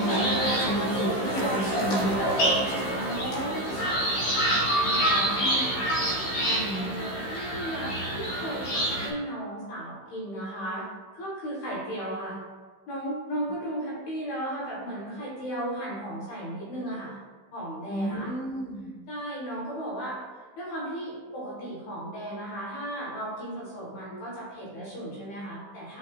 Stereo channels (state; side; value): late; right; 15 ms